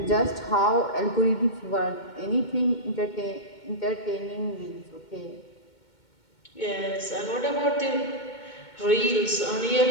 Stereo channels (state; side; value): late; right; 2.2 ms